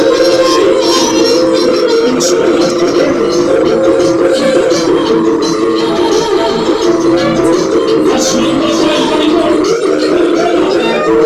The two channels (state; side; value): identical; both; correlation 1.00